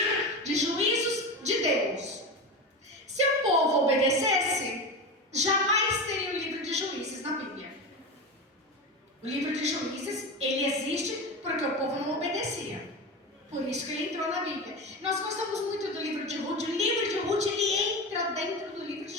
de juízos de Deus. Se o povo obedecesse, jamais teria o livro de Juízes na Bíblia. O livro de Juízes, ele existe porque o povo não obedecia. Por isso que ele entrou na Bíblia. Nós gostamos muito do livro de Ruth. O livro de Ruth, ele entra dentro do livro de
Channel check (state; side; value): normal; both; correlation 0.23